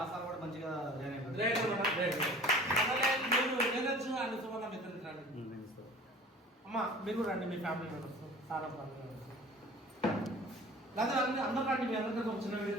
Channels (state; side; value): normal; both; correlation 0.44